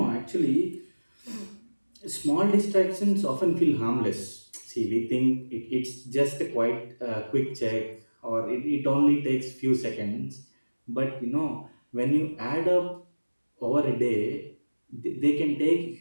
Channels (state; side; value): inverted; both; correlation -1.00